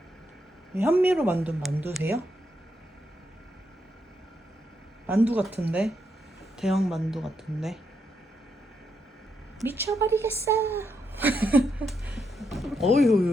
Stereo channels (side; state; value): both; normal; correlation 0.80